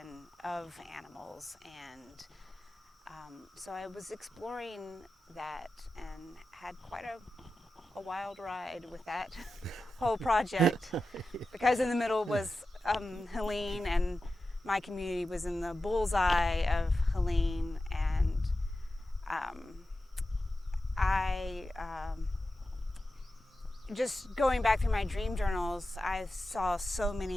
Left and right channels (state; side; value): normal; both; correlation 0.92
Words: of animals, and so I was exploring that and had quite a wild ride with that whole project, because in the middle was Helene, and my community was in the bullseye of Helene, and I just going back through my dream journals, I saw so